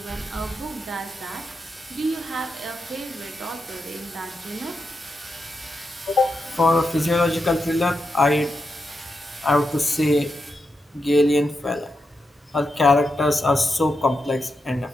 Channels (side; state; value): both; normal; correlation 0.86